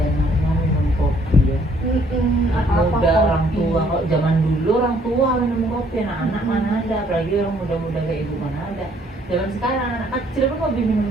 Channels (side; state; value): both; normal; correlation 0.64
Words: minum kopi ya. Muda orang tua, kok zaman dulu orang tua minum kopi, anak-anak mana ada, apalagi orang muda-muda kayak ibu mana ada. Zaman sekarang anak kecil pun hobi